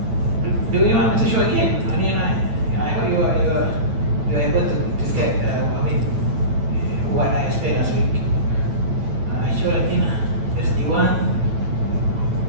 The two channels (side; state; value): left; late; 9.0 ms